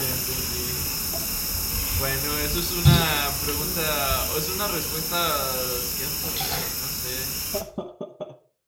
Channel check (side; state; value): both; identical; correlation 1.00